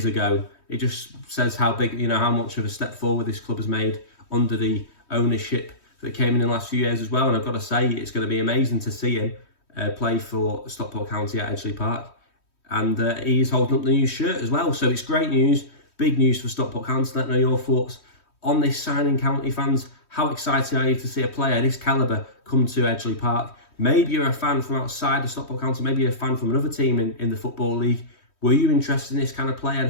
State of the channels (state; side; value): late; right; 3.1 ms